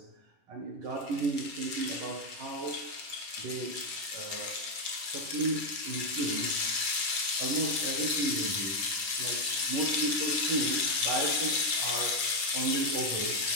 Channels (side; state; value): left; late; 9.9 ms